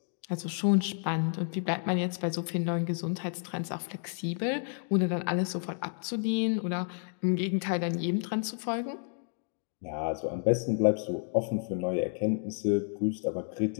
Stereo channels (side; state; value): right; silent; 57 dB below the other